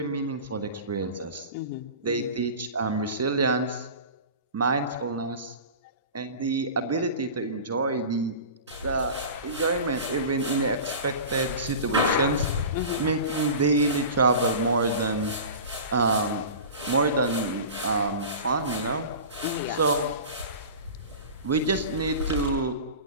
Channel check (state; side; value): inverted; both; correlation -0.35